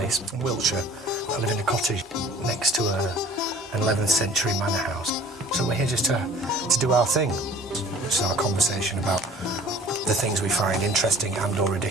in Wiltshire. I live in a cottage next to an 11th century manor house. So we're here just to do our thing, which is our conversation about the things we find interesting and or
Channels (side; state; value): both; normal; correlation 0.49